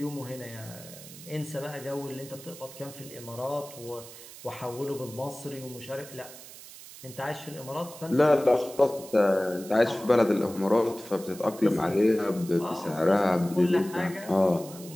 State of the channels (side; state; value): right; noise; hiss, 16 dB below the sound